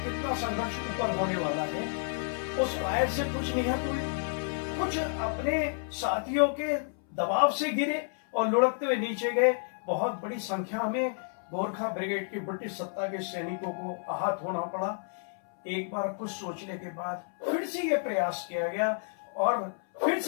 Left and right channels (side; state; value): right; silent; 57 dB below the other